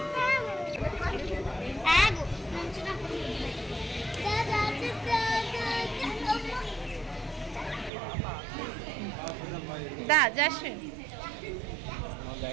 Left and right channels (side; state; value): left; drops out; at 7.9 s